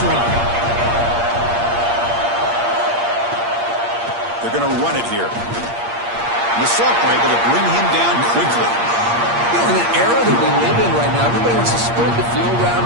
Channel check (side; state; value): left; late; 8.6 ms